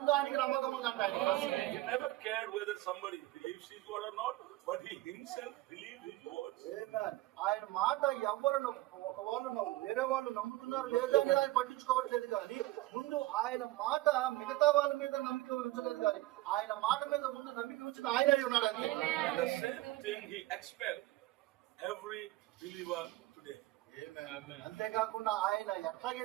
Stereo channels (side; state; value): left; quieter; 17.7 dB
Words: ఆయనకి నమ్మకం ఉందంట. He never cared whether somebody believes his word or not, but he himself believed his words. ఆయన మాట ఎవరు ఒకవాళ్ళు వేరే వాళ్ళు నమ్ముతున్నారు లేదా అని ఆయన పట్టించుకోవట్లేదు, కానీ ముందు ఆయన మాట మిగతా వాళ్ళ మీద నమ్మిక ఉంచలేదు, కానీ ఆయన మాట మీద ముందు నమ్మిక ఉంచిన ఆయన అయి ఉన్నాడు. అంతే. And the same thing he expects every believer today. అంతేకాకుండా ఆయన